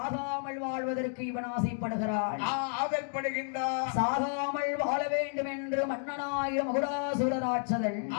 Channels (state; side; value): silent; right; 57 dB below the other